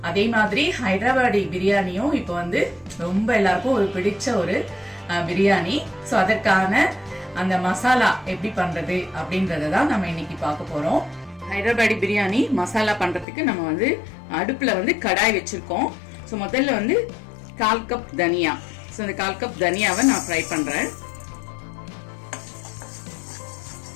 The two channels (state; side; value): drops out; right; at 13.2 s